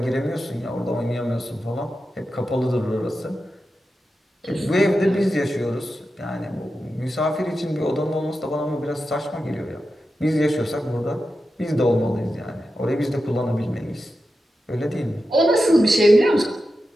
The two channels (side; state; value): both; normal; correlation 0.91